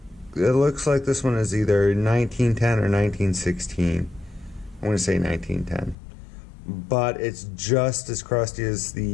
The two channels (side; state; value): right; drops out; at 6.0 s